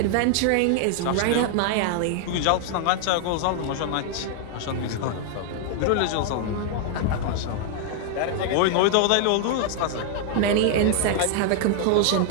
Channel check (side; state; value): both; different; correlation 0.00